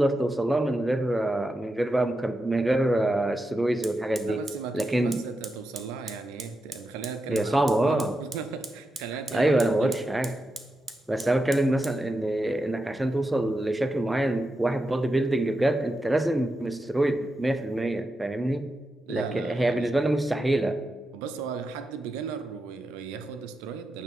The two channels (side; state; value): both; normal; correlation 0.88